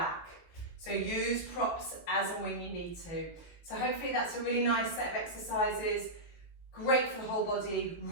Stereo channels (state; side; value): late; right; 18 ms